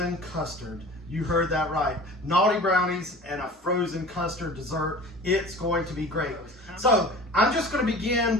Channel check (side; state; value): both; normal; correlation 0.41